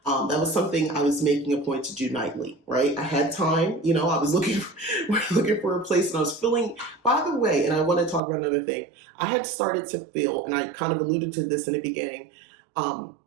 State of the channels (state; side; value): drops out; left; at 8.2 s